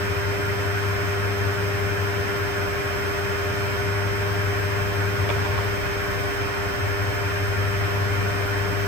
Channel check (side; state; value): right; late; 10 ms